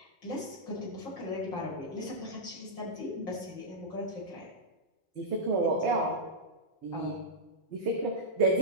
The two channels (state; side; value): late; right; 5.7 ms